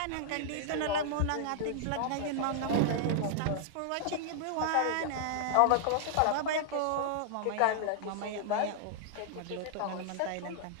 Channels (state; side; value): different; both; correlation -0.01